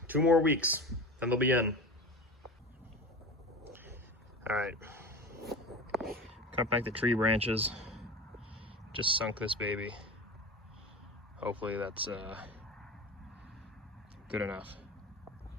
2 more weeks, then they'll be in. All right, cut back the tree branches. Just sunk this baby. Hopefully that's good enough.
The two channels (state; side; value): normal; both; correlation 0.30